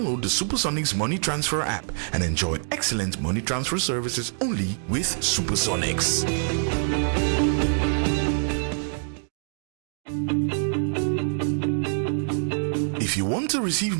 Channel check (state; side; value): silent; left; digital silence